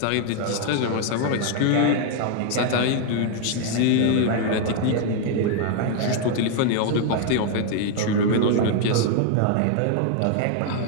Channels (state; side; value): different; both; correlation 0.00